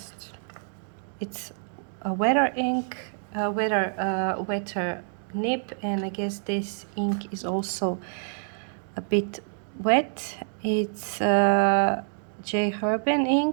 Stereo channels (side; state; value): left; silent; digital silence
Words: it's a wetter ink, wetter nib, and I guess this ink is also a bit wet. It's J. Herbin